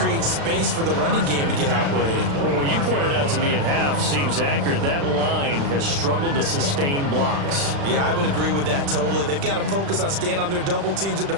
space for the running game to get operating. Well, what you pointed out to me at half seems accurate. That line has struggled to sustain blocks. Yeah, I would agree with that totally. They've got to focus on staying on their double teams at the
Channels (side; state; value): left; late; 36 ms